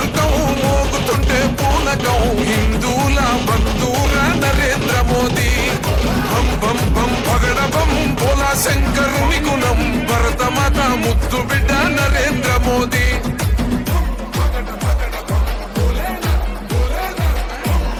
మోగుతుంటే పూనకం హిందూల బంధూర నరేంద్ర మోదీ బం బం బం పగడ బం బోలా శంకరుని గుణం భరతమాత ముద్దు బిడ్డ నరేంద్ర మోదీ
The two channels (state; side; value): identical; both; correlation 1.00